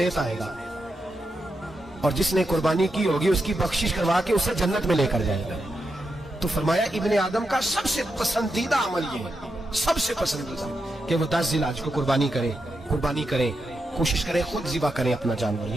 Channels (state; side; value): normal; both; correlation 0.86